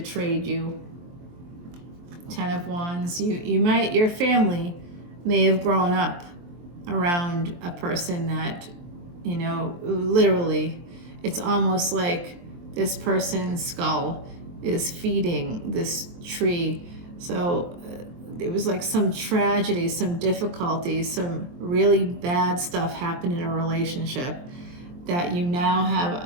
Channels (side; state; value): left; late; 23 ms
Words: you. Ten of Wands. Your family may have grown up around a person that, literally, it's almost like this person's skull is feeding this tree. So it was like some tragedy, some difficulty, some really bad stuff happened in a relationship, that you now have